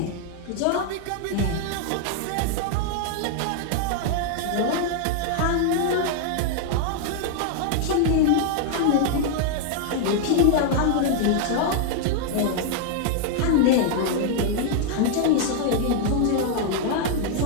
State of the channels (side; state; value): both; different; correlation 0.00